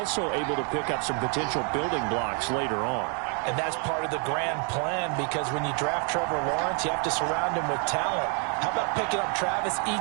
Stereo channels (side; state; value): left; quieter; 38.6 dB